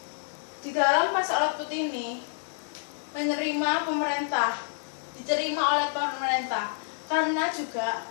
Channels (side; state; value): right; silent; digital silence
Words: di dalam pasar output ini diterima oleh pemerintah karena juga